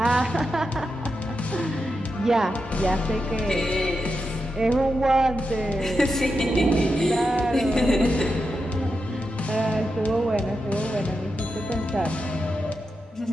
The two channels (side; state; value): both; normal; correlation 0.88